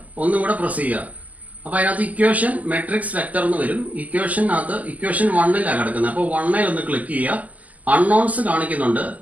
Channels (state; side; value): late; left; 0.076 ms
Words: ഒന്നും കൂടെ പ്രസ് ചെയ്യുക. അപ്പോൾ അതിനകത്ത് ഇക്വേഷൻ മെട്രിക്സ് വെക്ടർ എന്ന് വരും. ഇക്വേഷനകത്ത് ഇക്വേഷൻ 1ലാണ് കിടക്കുന്നത്. അപ്പോൾ 1ൽ ഒന്ന് ക്ലിക്ക് ചെയ്യുക. അൺനോൺസ് കാണിക്കുന്നുണ്ട്,